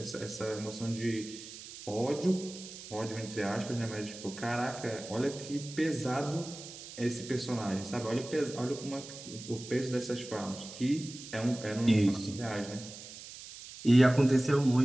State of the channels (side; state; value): right; noise; hiss, 13 dB below the sound